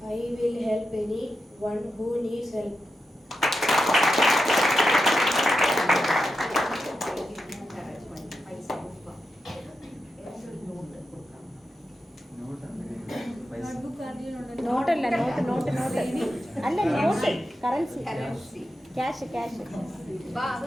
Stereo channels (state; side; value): normal; both; correlation 0.89